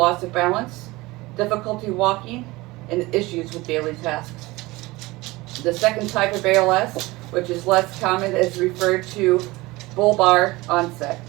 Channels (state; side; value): quieter; left; 21.2 dB